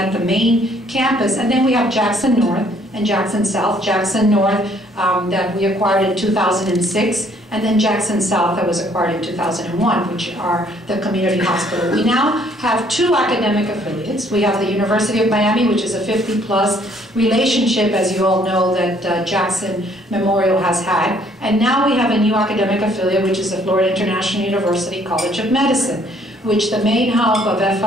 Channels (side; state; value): both; normal; correlation 0.63